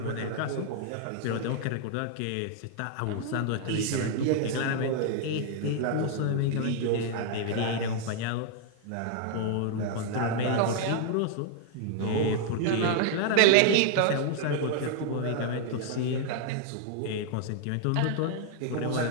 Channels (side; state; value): both; different; correlation 0.00